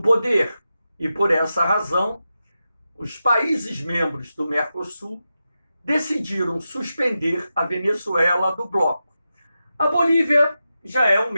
poder. E, por essa razão, os países membros do Mercosul decidiram suspender a Venezuela do bloco. A Bolívia já é um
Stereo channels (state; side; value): inverted; both; correlation -0.90